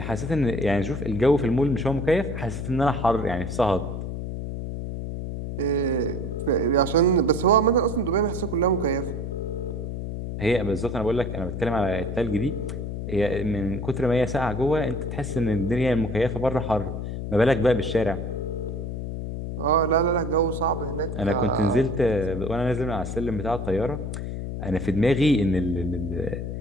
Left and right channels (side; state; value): left; noise; hum, 5 dB below the sound